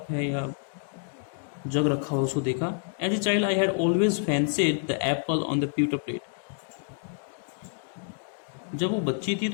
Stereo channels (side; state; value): right; silent; digital silence